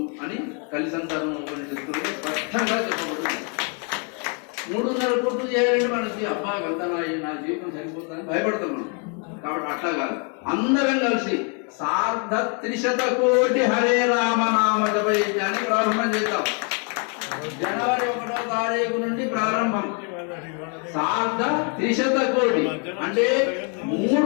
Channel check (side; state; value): right; quieter; 37.5 dB